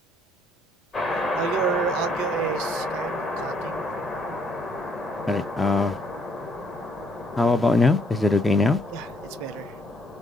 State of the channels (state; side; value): normal; both; correlation 0.68